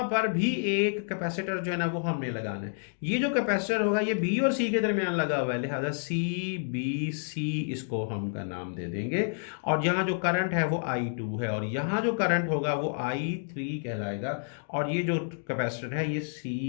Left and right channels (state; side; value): silent; right; digital silence